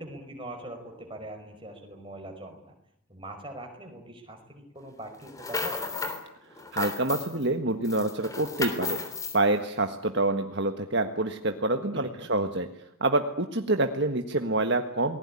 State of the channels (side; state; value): both; normal; correlation -0.20